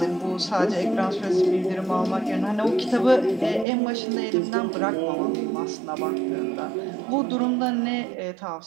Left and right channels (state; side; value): drops out; left; at 3.7 s